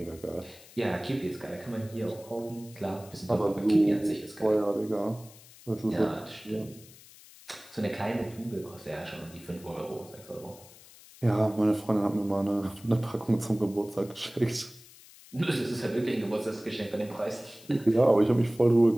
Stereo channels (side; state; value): left; noise; hiss, 21 dB below the sound